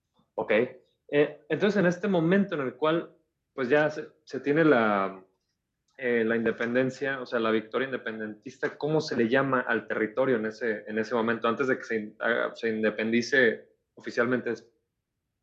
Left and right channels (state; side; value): identical; both; correlation 1.00